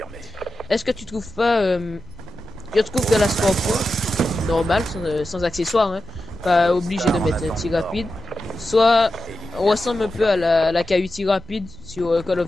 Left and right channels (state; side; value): noise; left; rumble, 19 dB below the sound